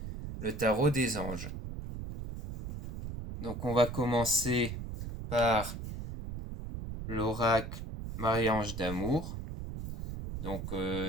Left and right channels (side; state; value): right; noise; rumble, 7 dB below the sound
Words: le tarot des anges. Donc on va commencer par l'oracle Maria-Ange d'amour. Donc